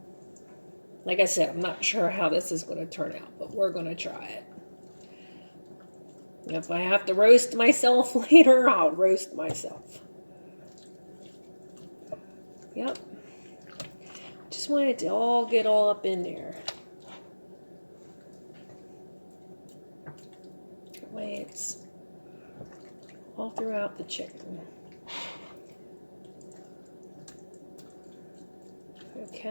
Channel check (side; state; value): both; inverted; correlation -1.00